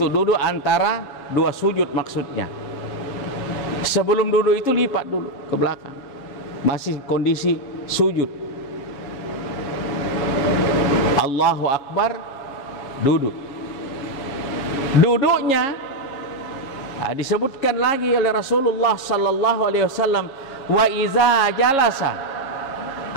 duduk antara 2 sujud maksudnya. Sebelum duduk itu lipat dulu ke belakang. Masih kondisi sujud. Allahu Akbar, duduk. Duduknya disebutkan lagi oleh Rasulullah sallallahu alaihi wasallam, wa iza jalasa,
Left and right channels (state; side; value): late; right; 7.3 ms